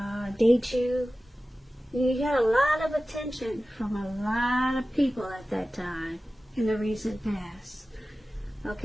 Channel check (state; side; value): normal; both; correlation 0.96